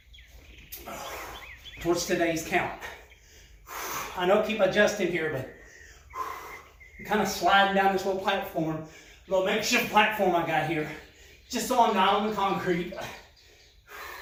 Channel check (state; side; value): identical; both; correlation 1.00